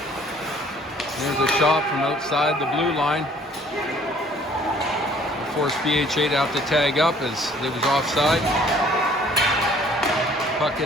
There's a shot from outside the blue line. Forced PHA to have to tag up as it was offside. Puck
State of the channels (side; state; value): both; normal; correlation 0.57